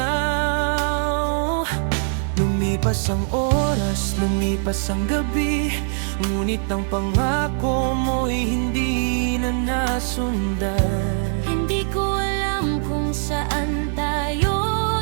Lumipas ang oras, lumipas ang gabi, ngunit ang pangako mo'y hindi na nasundan. Hindi ko alam kung saan tayo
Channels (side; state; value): left; silent; 64 dB below the other